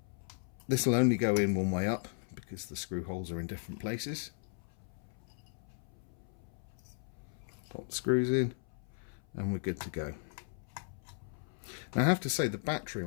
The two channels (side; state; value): right; silent; 54 dB below the other